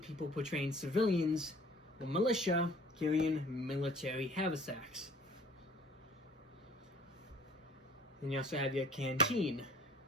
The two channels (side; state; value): both; normal; correlation 0.51